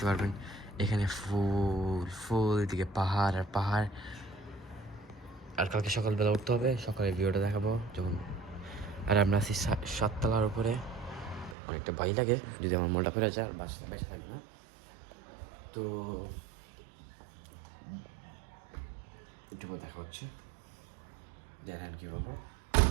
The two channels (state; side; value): drops out; left; at 11.6 s